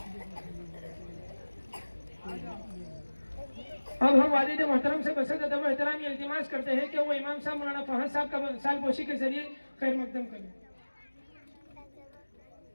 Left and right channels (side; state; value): both; inverted; correlation -1.00